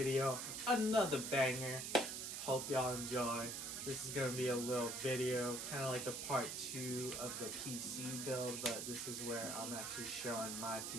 another banger. Hope y'all enjoy. This is gonna be a little video, kind of like the part 2 of the PC build, but this is where I'm actually showing my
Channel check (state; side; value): noise; right; hiss, 4 dB below the sound